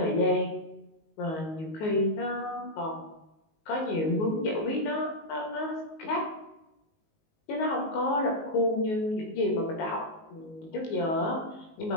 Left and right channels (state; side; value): late; right; 19 ms